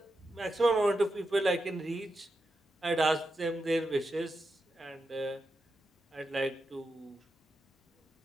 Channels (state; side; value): normal; both; correlation 0.88